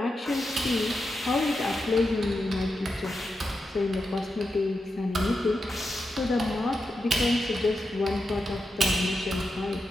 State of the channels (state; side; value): normal; both; correlation 0.88